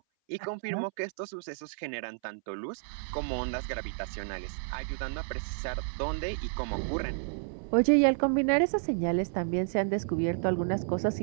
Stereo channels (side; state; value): left; silent; 57 dB below the other